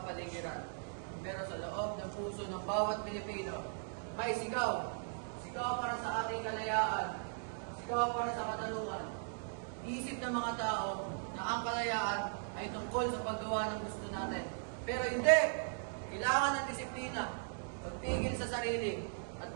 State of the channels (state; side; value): silent; left; digital silence